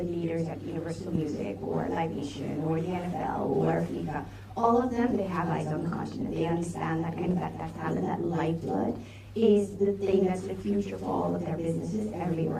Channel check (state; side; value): identical; both; correlation 1.00